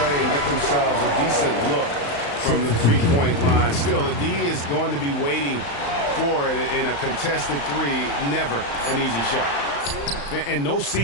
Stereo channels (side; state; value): right; late; 35 ms